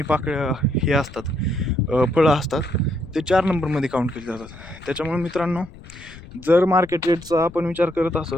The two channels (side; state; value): left; noise; rumble, 18 dB below the sound